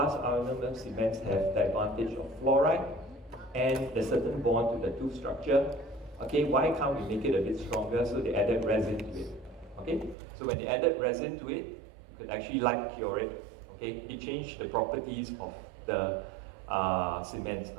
ionomer cements have the advantage of fluoride and the certain bond to the tooth structure. Okay, why can't we make it a bit stronger? So they added resin to it. Okay, so when they added resin to it, you could actually light cure it. Okay, it changed the properties of the cements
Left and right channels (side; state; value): left; drops out; at 10.2 s